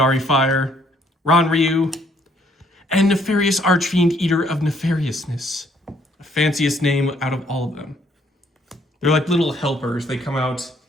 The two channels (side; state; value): both; normal; correlation 0.66